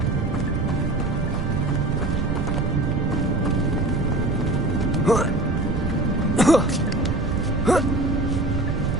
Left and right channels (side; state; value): right; noise; rumble, 2 dB below the sound